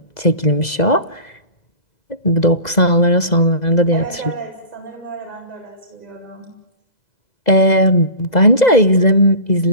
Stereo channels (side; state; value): right; late; 2.0 ms